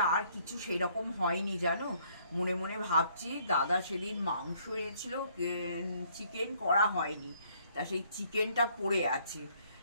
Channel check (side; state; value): both; inverted; correlation -0.65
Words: আর কিছু সেই রকম হয়নি জানো। মনে মনে ভাবছি, দাদা সেদিন মাংস এনেছিল, চিকেন করা হয়নি, তা সেই চিকেনটা পড়ে আছে।